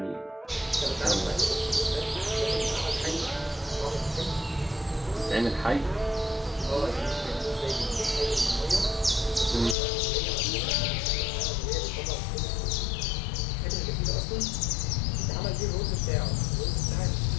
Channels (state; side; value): drops out; right; at 9.8 s